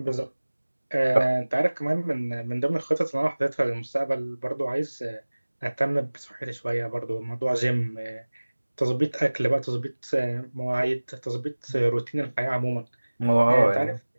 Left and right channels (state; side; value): inverted; both; correlation -1.00